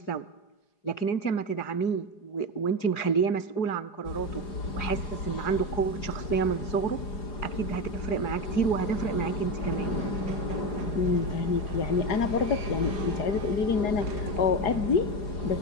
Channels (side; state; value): right; late; 4.8 ms